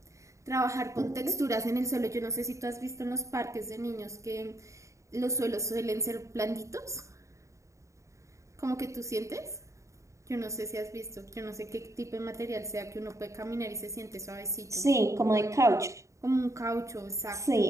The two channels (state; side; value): late; left; 0.15 ms